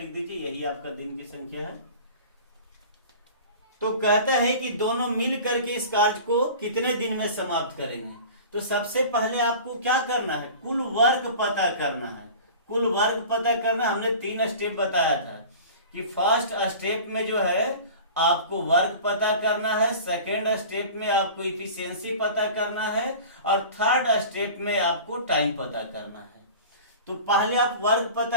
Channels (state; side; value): inverted; both; correlation -0.39